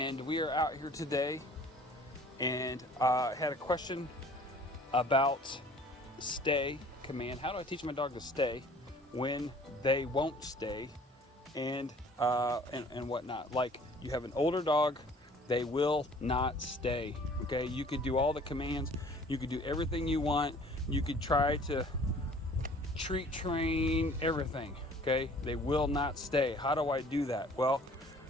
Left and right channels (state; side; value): normal; both; correlation 0.52